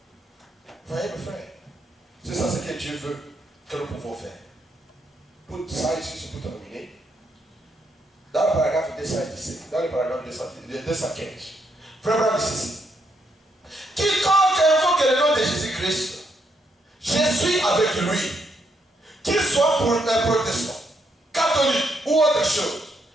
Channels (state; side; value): normal; both; correlation 0.76